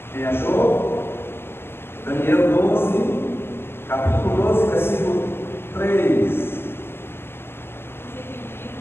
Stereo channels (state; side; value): late; right; 0.12 ms